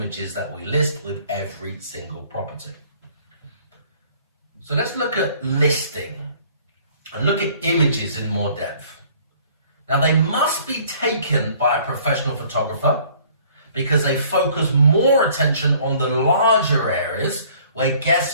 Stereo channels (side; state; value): both; inverted; correlation -0.56